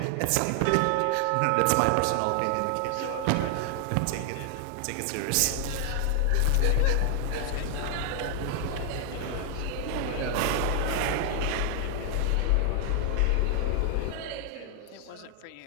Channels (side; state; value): both; different; correlation 0.00